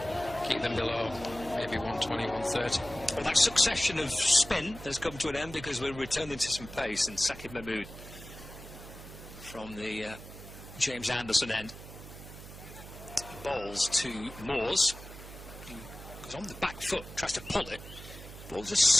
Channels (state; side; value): noise; right; hum, 14 dB below the sound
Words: keep them below maybe 120, 130. Well, that succession of spin has come to an end because we're returning to some pace. And Sakib Mahmood from the James Anderson end bowls to Moores, who goes on the back foot, tries to pull it. The ball just